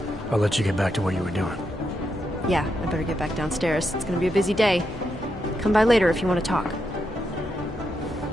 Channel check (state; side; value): normal; both; correlation 0.83